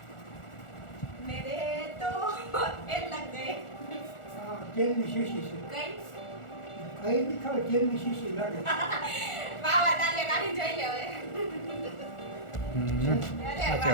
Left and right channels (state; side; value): late; right; 1.4 ms